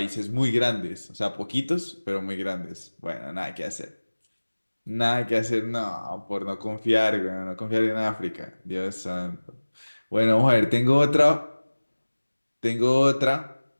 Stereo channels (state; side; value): inverted; both; correlation -1.00